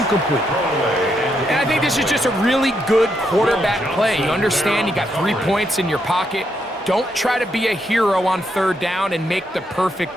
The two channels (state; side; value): normal; both; correlation 0.79